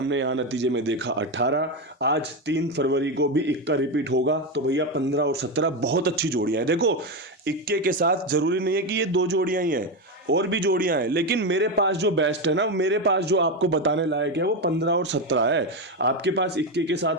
यहाँ नतीजे में देखा 18, आज 3 फरवरी को भी इक्का रिपीट होगा। तो भैया 15 और 17 बहुत अच्छी जोड़ियां हैं। देखो, इक्के के साथ जरूरी नहीं है कि ये 2 जोड़ियां ही हैं, और भी जोड़ियां हैं, लेकिन मेरे पास जो बेस्ट है ना, मेरे पास जो आपको बताने लायक है वो 15 और 17 है। आपके पास इक्के के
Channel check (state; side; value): normal; both; correlation 0.12